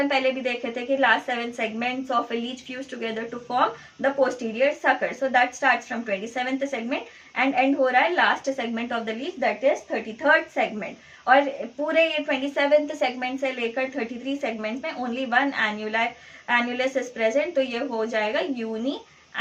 पहले भी देखे थे कि last 7 segments of a leech fuse together to form the posterior sucker. So that starts from 27th segment and end हो रहा है last segment of the leech, that is 33rd segment. और पूरे ये 27th सेगमेंट से लेकर 33 सेगमेंट्स में ओनली वन एन्युलस इज प्रेजेंट, तो ये हो जाएगा यूनी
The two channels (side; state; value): both; identical; correlation 1.00